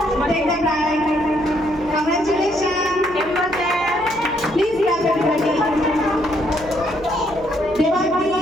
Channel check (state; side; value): noise; right; hum, 19 dB below the sound